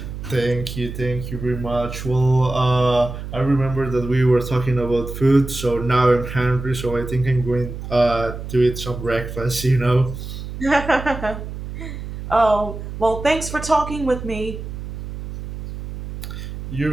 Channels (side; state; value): right; noise; hum, 9 dB below the sound